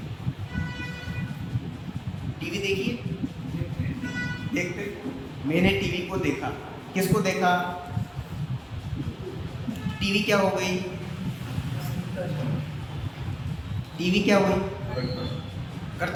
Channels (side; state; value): both; identical; correlation 1.00